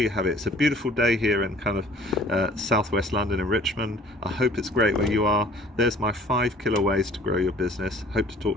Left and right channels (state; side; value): normal; both; correlation 0.51